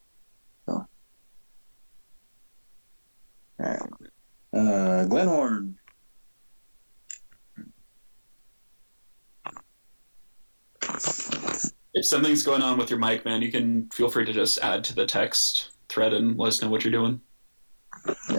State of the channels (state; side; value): inverted; both; correlation -1.00